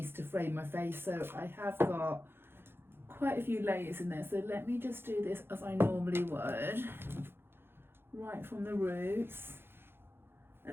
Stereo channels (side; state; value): left; late; 0.11 ms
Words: to frame my face, so I have got quite a few layers in there. So let me just do this as I normally would, right from the roots,